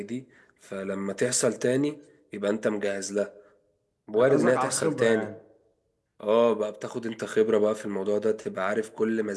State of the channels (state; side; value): identical; both; correlation 1.00